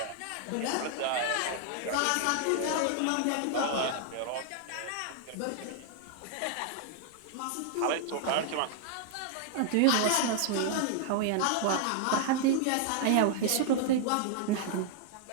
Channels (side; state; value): both; different; correlation 0.00